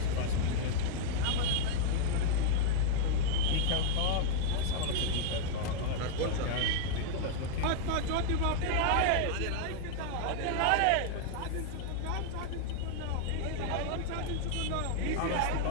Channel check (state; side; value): different; both; correlation -0.01